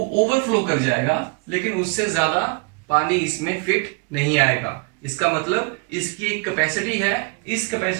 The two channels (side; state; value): left; quieter; 31.4 dB